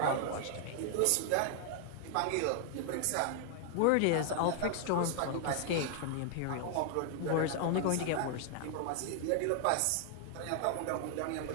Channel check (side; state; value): both; different; correlation 0.00